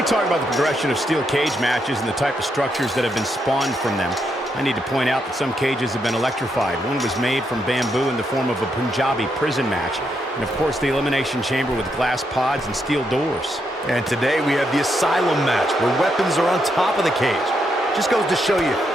talk about the progression of steel cage matches and the type of structures that have been spawned from them. I need to point out that some cages have been electrified. One was made from bamboo in the form of a Punjabi prison match. And of course, the Elimination Chamber with glass pods and steel doors. And today we have the Asylum match, where weapons are on top of the cage. Just goes to show you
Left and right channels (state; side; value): normal; both; correlation 0.79